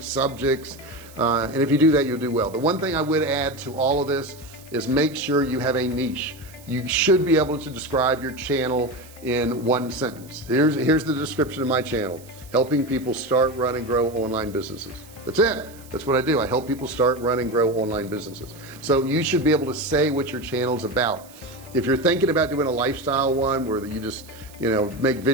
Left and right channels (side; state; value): right; noise; hiss, 22 dB below the sound